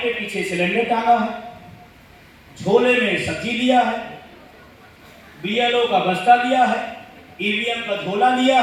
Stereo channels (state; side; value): identical; both; correlation 1.00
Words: के पीछे सिलेंडर टांगा है, झोले में सब्जी लिया है, बीएलओ का बस्ता लिया है, ईवीएम का झोला लिया